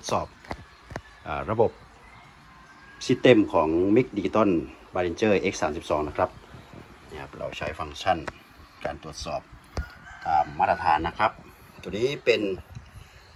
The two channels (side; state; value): both; identical; correlation 1.00